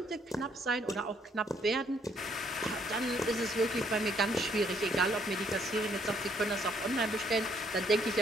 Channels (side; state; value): both; normal; correlation 0.68